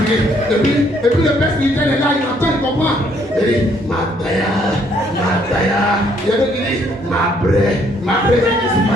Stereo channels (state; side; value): normal; both; correlation 0.67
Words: Et puis le père spirituel est là, il entend, il comprend. Il dit, Mataya. Il y a d'autres qui disent, ma bré, je suis